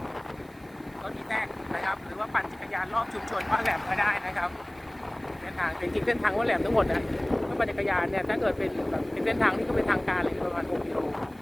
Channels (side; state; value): right; noise; hiss, 30 dB below the sound